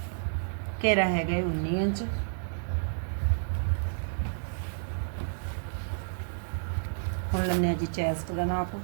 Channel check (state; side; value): silent; left; digital silence